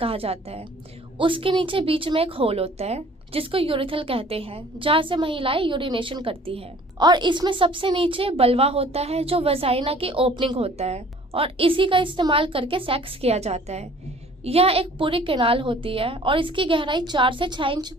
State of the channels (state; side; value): normal; both; correlation 0.52